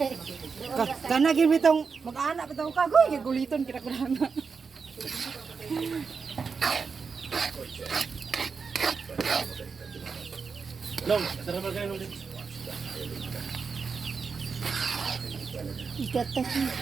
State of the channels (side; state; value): left; quieter; 5.3 dB